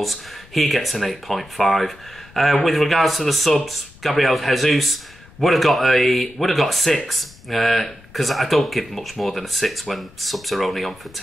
He gets an 8.5. With regards to the subs, Gabriel Jesus would have got a 6, because I don't give much more than a 6 when subs are only on for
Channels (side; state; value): left; noise; rumble, 24 dB below the sound